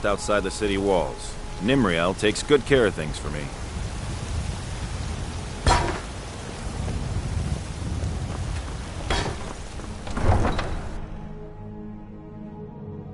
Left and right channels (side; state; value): both; identical; correlation 1.00